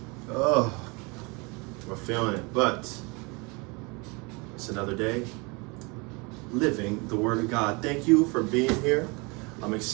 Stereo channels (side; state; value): left; quieter; 28.4 dB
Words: Oh, we're feeling it, but it's another day living the Word of God. Thank you for being here. I'm